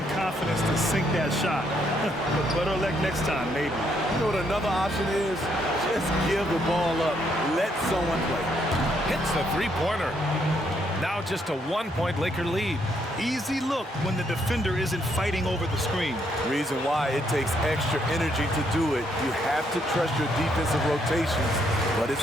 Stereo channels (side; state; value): both; normal; correlation 0.73